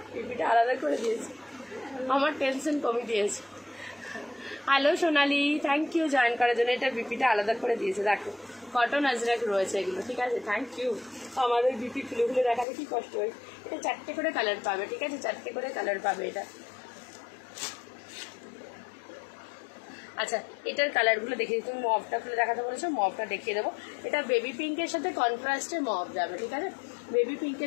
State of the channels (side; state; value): right; drops out; at 12.7 s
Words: পিপিটা আলাদা করে দিয়েছে, আমার টেনশন কমে দিয়েছে। Hello Sonali, thank you join করার জন্য। এটা বিপিটা আলাদা করে দিয়েছে, দেখো কটন আজরাক রয়েছে এগুলো, ঠিক আছে, থ্যাংক ইউ। আমাদের বিপি খুলে খুলে দেখাতে কি কষ্ট হয়। এটা 4টে করে কালার পাবে, ঠিক আছে, 4টে করে কালার পাবে এটা। আচ্ছা, এটার কালারগুলো দেখিয়ে দিই, তুমি মভটা খুলে দেখাতে বলেছো, মভটা দেখিয়ে দেবো। এটা বেবি পিঙ্কের সাথে কন্ট্রাস্টে মভ যাবে, ঠিক আছে, বেবি